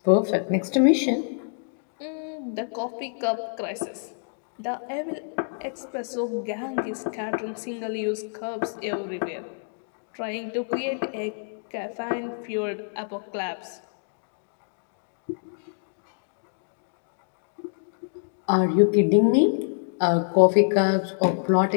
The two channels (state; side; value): silent; right; digital silence